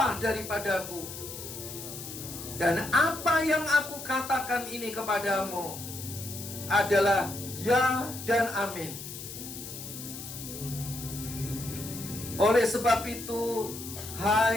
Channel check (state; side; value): noise; left; hiss, 10 dB below the sound